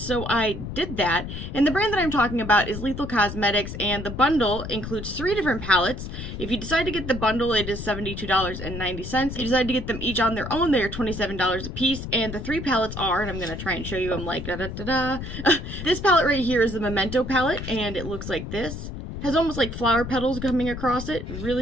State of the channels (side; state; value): left; noise; rumble, 8 dB below the sound